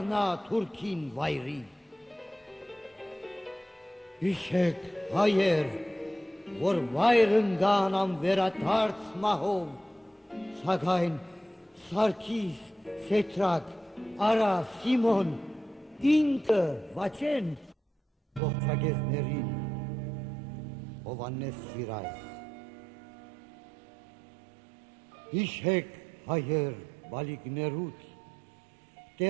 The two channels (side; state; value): left; drops out; at 18.4 s